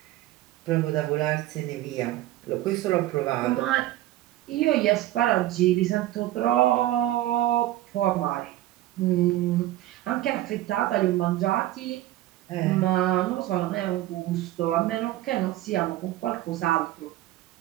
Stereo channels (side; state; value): left; quieter; 15.0 dB